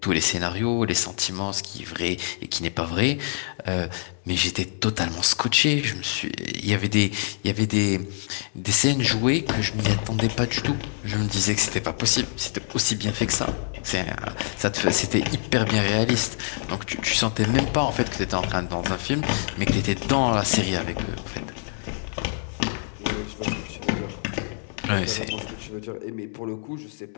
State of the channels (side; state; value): right; silent; digital silence